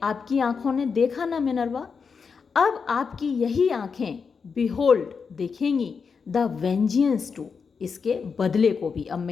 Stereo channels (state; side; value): quieter; right; 5.6 dB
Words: आपकी आंखों ने देखा ना मिनर्वा, अब आपकी यही आंखें बिहोल्ड, देखेंगी, द वेंजियंस टू, इसके बदले को भी। अब